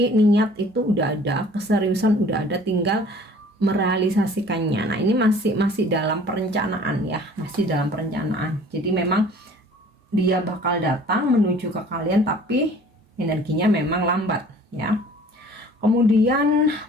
niat itu udah ada, keseriusan udah ada, tinggal merealisasikannya. Nah, ini masih dalam perencanaan, ya, masih dalam perencanaan. Jadi memang dia bakal datang menuju ke kalian, tapi energinya memang lambat, ya. Kemudian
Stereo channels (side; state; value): both; normal; correlation 0.50